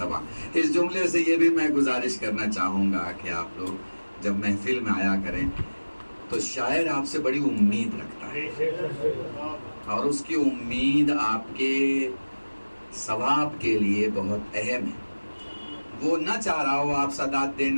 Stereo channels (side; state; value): both; inverted; correlation -1.00